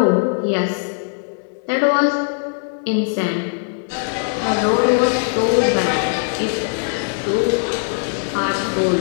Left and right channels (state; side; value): silent; right; digital silence